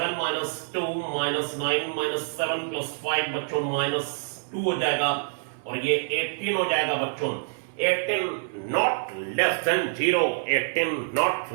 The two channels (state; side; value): silent; left; 61 dB below the other